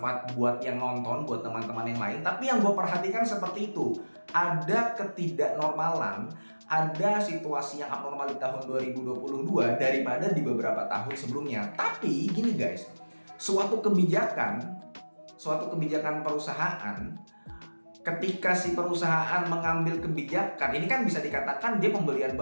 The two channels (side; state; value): both; inverted; correlation -1.00